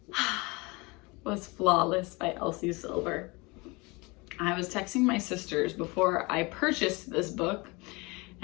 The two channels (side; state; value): right; quieter; 25.9 dB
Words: was Flawless by Elsie Silver. I was texting my sisters before I purchased this book,